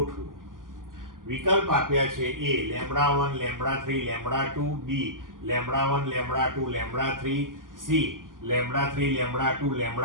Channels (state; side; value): late; left; 0.90 ms